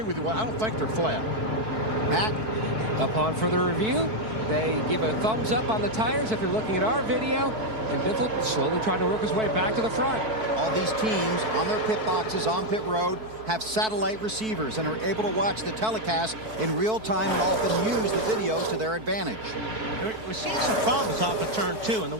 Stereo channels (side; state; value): left; late; 4.6 ms